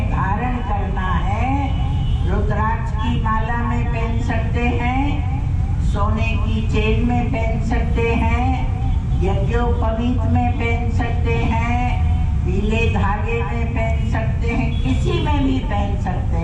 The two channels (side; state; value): both; identical; correlation 1.00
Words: धारण करना है, रुद्राक्ष की माला में पहन सकते हैं, सोने की चेन में पहन सकते हैं, यज्ञोपवीत में पहन सकते हैं, पीले धागे में पहन सकते हैं, किसी में भी पहन सकते